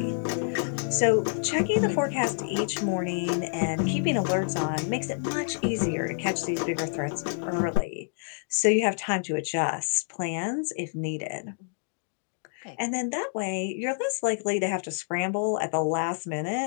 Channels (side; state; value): right; silent; digital silence